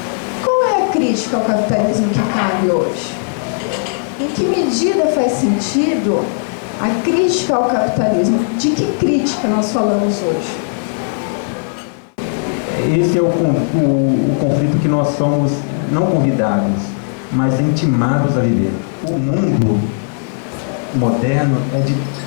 qual é a crítica ao capitalismo que cabe hoje? Em que medida faz sentido a crítica ao capitalismo? De que crítica nós falamos hoje? Esse é o conflito que nós somos não convidados, mas intimados a viver. O mundo moderno é de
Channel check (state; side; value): silent; right; 58 dB below the other